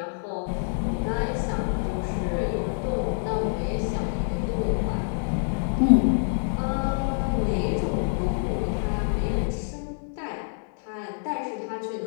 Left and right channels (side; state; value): right; silent; digital silence